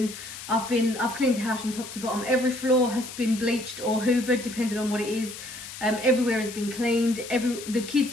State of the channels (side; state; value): left; noise; hiss, 12 dB below the sound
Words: I've cleaned the house from top to bottom. Every floor has been bleached or hoovered, depending on what it is. Everywhere has been cleaned. The kids'